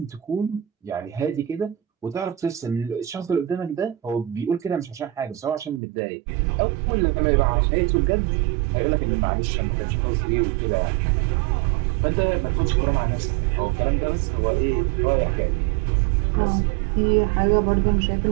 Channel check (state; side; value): drops out; left; at 5.8 s